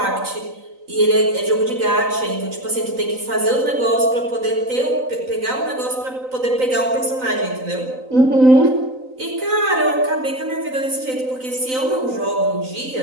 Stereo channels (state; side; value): late; left; 3.9 ms